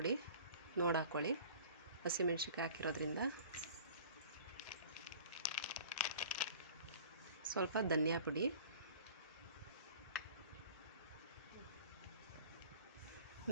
ನೋಡಿ ಹಾಕ್ಕೊಳ್ಳಿ, ಹಸಿಮೆಣ್ಸಿನ್ಕಾಯಿ ಹಾಕಿರೋದ್ರಿಂದ. ಸ್ವಲ್ಪ ಧನಿಯಾ ಪುಡಿ,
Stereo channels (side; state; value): both; inverted; correlation -0.45